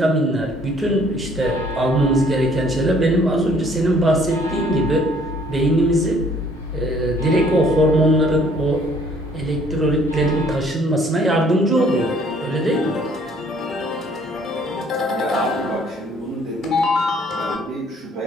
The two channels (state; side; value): normal; both; correlation 0.60